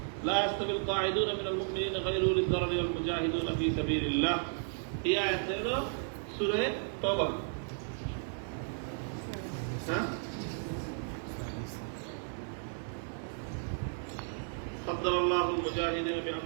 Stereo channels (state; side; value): silent; left; 55 dB below the other